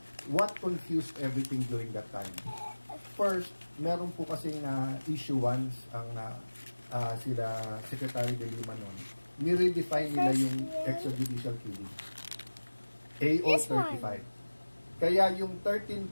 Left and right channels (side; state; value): both; inverted; correlation -1.00